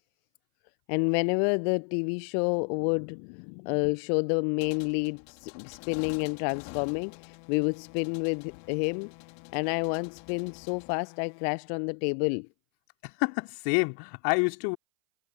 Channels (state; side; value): silent; right; 58 dB below the other